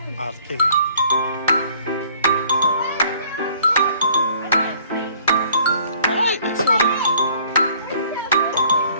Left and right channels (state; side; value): inverted; both; correlation -0.58